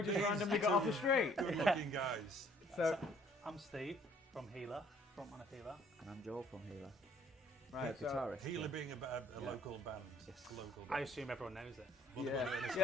just randomly got off the street. Good looking guys. So I'm Steve from Healer, frontman of Healer. And I'm Joel from Healer. right, so guitarist. Healer being a local band. Yes. Local I band. assume everyone knows it.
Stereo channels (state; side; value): normal; both; correlation 0.60